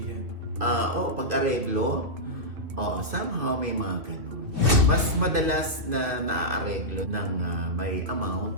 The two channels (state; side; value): late; left; 2.6 ms